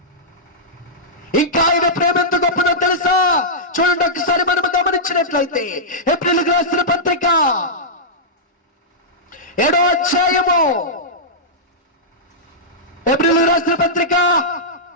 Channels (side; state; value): both; normal; correlation -0.12